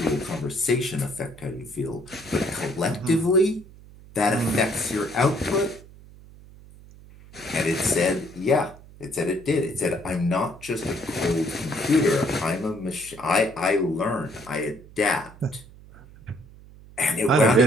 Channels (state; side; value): noise; right; hum, 21 dB below the sound